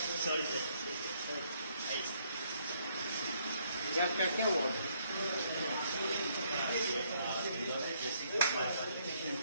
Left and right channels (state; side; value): inverted; both; correlation -0.70